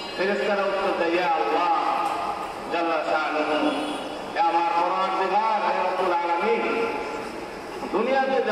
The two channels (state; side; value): identical; both; correlation 1.00